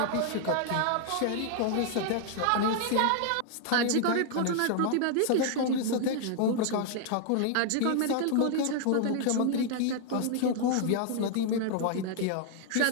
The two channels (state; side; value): different; both; correlation 0.00